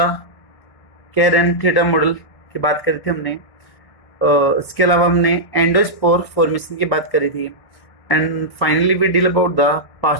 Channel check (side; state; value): right; late; 1.6 ms